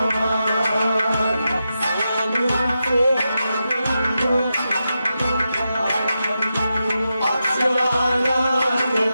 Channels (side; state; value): both; inverted; correlation -0.88